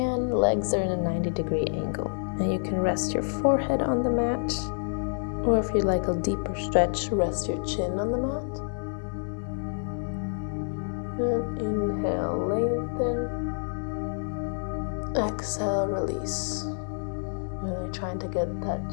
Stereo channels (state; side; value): silent; right; digital silence